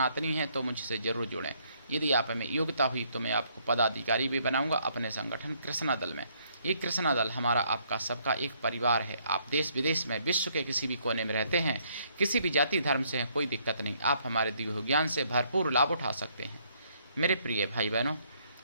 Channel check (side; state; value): both; inverted; correlation -0.68